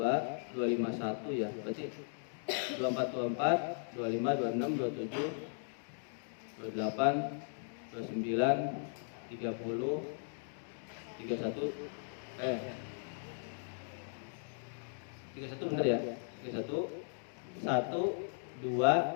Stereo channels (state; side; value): silent; right; digital silence